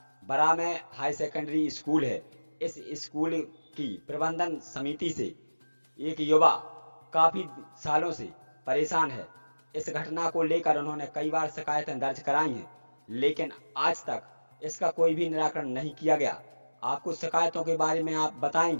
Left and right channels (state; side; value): inverted; both; correlation -1.00